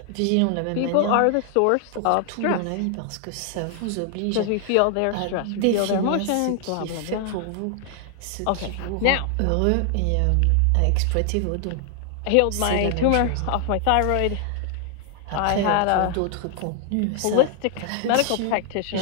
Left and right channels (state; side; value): different; both; correlation 0.00